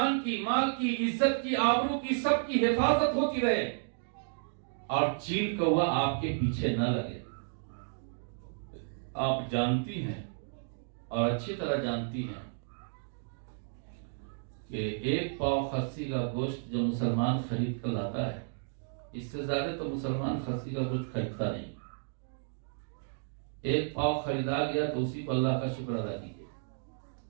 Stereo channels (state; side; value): silent; left; digital silence